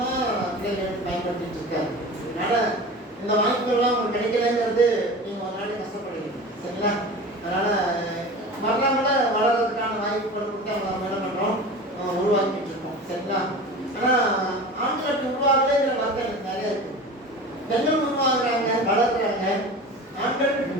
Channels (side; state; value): both; normal; correlation 0.34